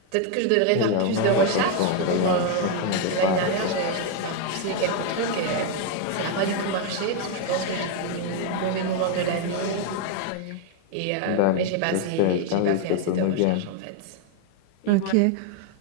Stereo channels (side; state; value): both; different; correlation 0.01